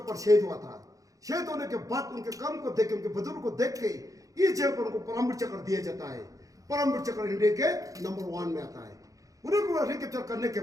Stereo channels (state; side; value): late; left; 0.16 ms